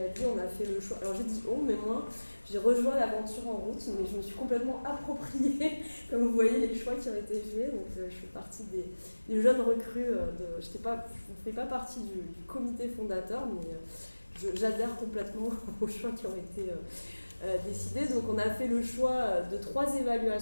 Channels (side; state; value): both; inverted; correlation -1.00